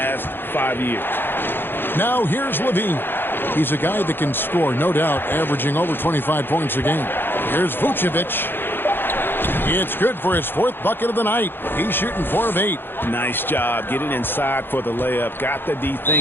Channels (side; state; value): right; late; 0.10 ms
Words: 5 years. Now here's Levine. He's a guy that can score, no doubt, averaging over 25 points a game. Here's Vucevic. It's good for his 4th bucket of the night. He's shooting 4 of 8. Nice job getting inside for the layup. Got the D